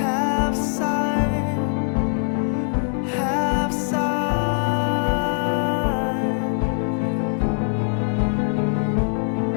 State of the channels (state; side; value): silent; right; 64 dB below the other